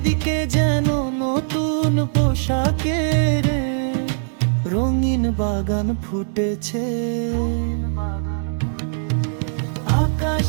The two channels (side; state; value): left; silent; 62 dB below the other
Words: যেন নতুন পোশাকের রঙিন বাগান ফুটেছে।